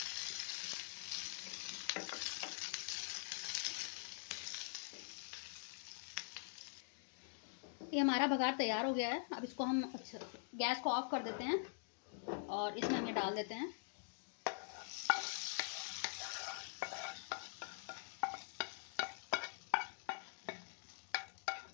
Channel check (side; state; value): right; silent; digital silence